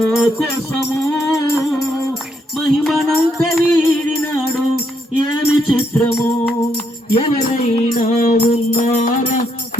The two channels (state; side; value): normal; both; correlation 0.76